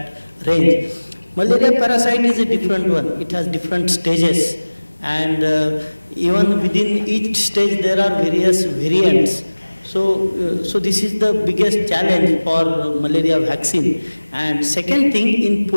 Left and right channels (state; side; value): inverted; both; correlation -1.00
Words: range. Malaria parasite is a different one. It has different stages, and even within each stage there are various variants. So this is the biggest challenge for malaria vaccine. And second thing, in